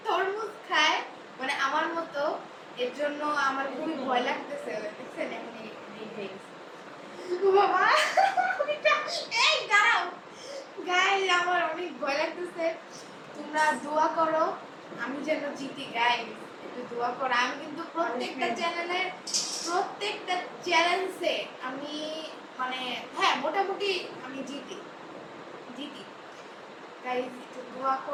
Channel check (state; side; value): identical; both; correlation 1.00